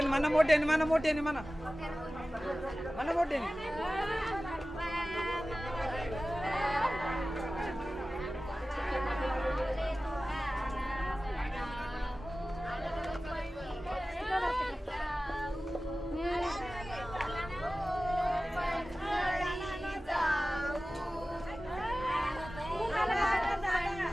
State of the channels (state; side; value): normal; both; correlation 0.96